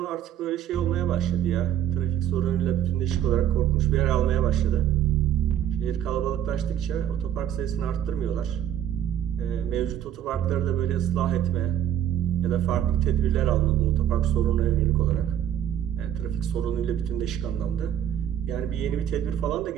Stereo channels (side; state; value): left; quieter; 10.2 dB